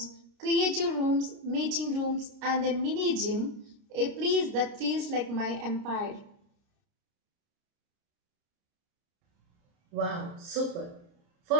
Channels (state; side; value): late; left; 29 ms